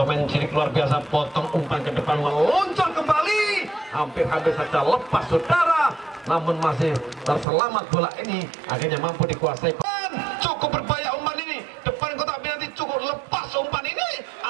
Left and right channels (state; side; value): drops out; left; at 7.5 s